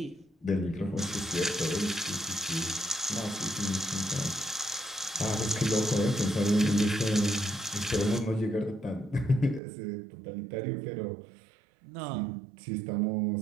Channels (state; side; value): drops out; left; at 9.6 s